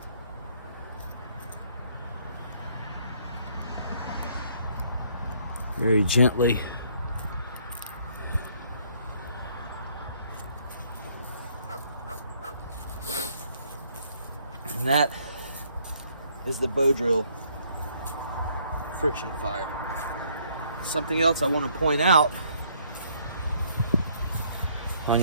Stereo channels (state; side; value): inverted; both; correlation -0.65